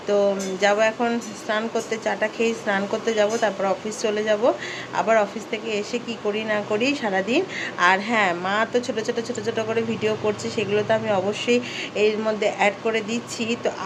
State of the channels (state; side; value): identical; both; correlation 1.00